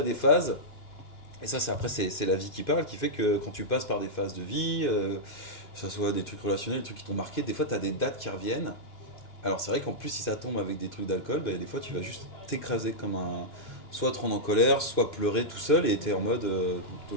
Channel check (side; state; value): right; late; 2.1 ms